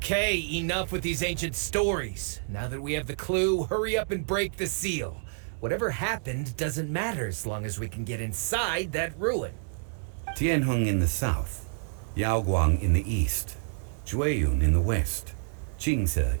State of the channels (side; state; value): left; silent; digital silence